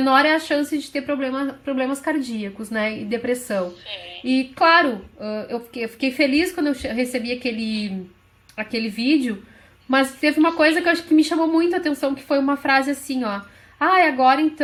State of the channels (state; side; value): identical; both; correlation 1.00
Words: é a chance de ter problemas cardíacos, né, e depressão. Sim. E claro, eu fiquei feliz quando eu recebi aquele vídeo, mas teve uma coisa que eu acho que me chamou muito a atenção, que foi uma frase assim, ó: agora